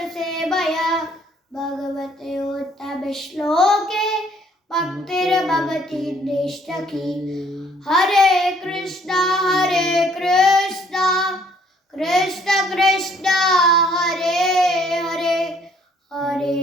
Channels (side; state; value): both; normal; correlation 0.62